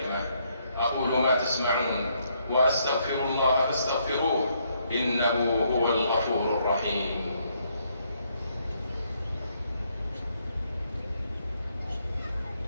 أقول ما تسمعون، وأستغفر الله فاستغفروه، إنه هو الغفور الرحيم.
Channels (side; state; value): both; inverted; correlation -0.73